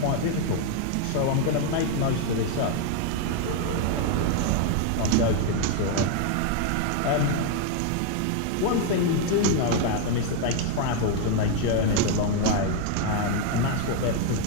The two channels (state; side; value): different; both; correlation 0.00